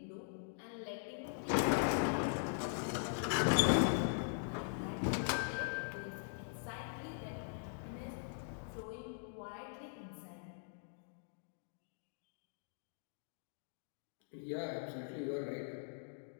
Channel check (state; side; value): silent; right; digital silence